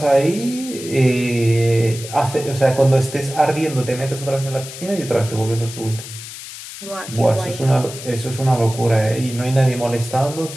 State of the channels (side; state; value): left; noise; hiss, 12 dB below the sound